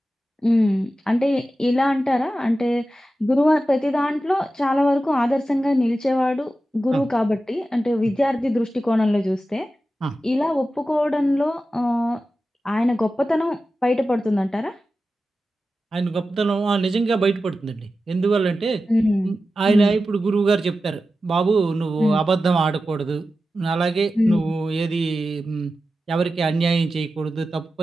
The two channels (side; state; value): both; normal; correlation 0.93